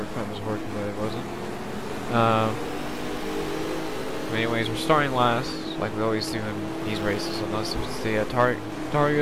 was working, but it wasn't. Anyways, we're starting last, like we always do in these races, unless it's the Target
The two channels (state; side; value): identical; both; correlation 1.00